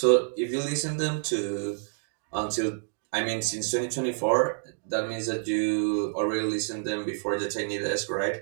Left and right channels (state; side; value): silent; left; digital silence